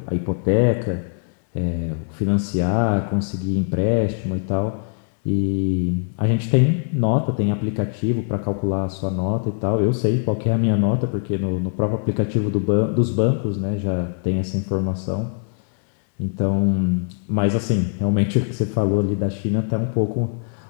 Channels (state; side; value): silent; right; 64 dB below the other